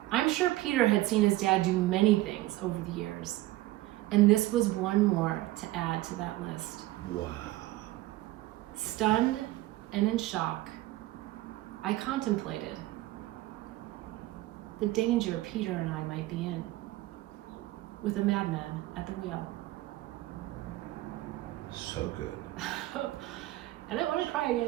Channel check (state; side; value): quieter; left; 17.3 dB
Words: I'm sure Peter had seen his dad do many things over the years, and this was one more to add to that list. Wow. Stunned and in shock, I contemplated the danger Peter and I might be in, with a madman at the wheel. So good. I don't want to cry